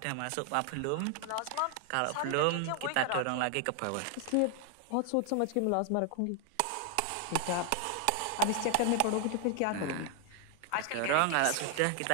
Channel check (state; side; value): different; both; correlation 0.00